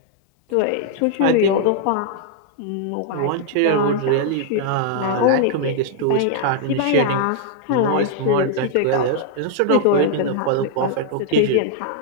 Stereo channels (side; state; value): both; different; correlation -0.01